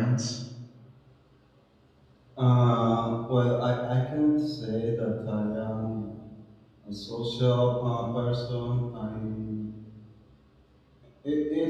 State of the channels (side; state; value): both; identical; correlation 1.00